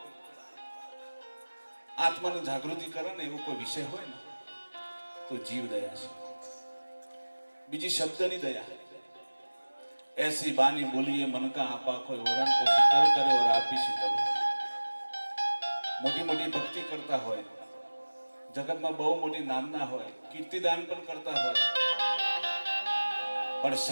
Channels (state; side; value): inverted; both; correlation -1.00